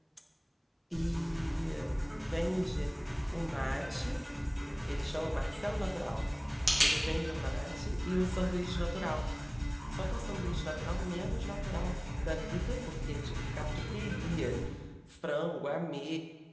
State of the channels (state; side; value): identical; both; correlation 1.00